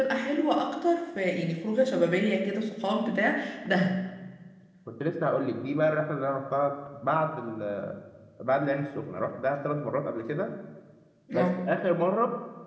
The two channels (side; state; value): both; identical; correlation 1.00